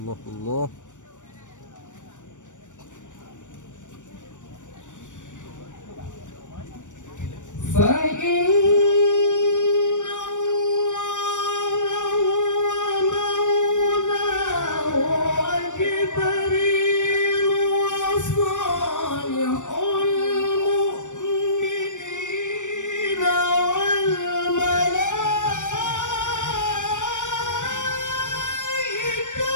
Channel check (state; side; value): late; right; 0.85 ms